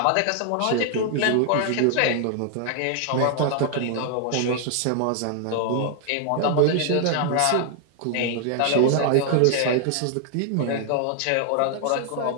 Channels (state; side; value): different; both; correlation 0.00